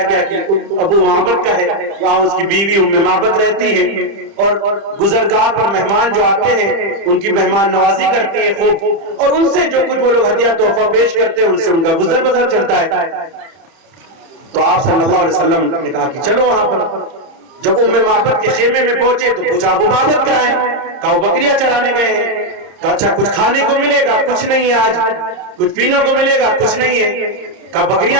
گیا کہ ابو معبد کا ہے. وہاں اس کی بیوی ام معبد رہتی ہے اور گزرگاہ پر مہمان جو آتے ہیں ان کی مہمان نوازی کرتی ہے خوب, اور ان سے جو کچھ وہ لوگ ہدیہ تحفہ پیش کرتے ہیں ان سے ان کا گزر بسر چلتا ہے. تو آپ صلی اللہ علیہ وسلم نے کہا کہ چلو وہاں پر. جب ام معبد کے خیمے میں پہنچے تو پوچھا ابو معبد کہاں ہے؟ کہا وہ بکریاں چرانے گئے ہیں. کہا اچھا کچھ کھانے کو ملے گا؟ کچھ نہیں ہے آج. کچھ پینے کو ملے گا؟ کچھ نہیں ہے. کہا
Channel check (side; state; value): left; late; 30 ms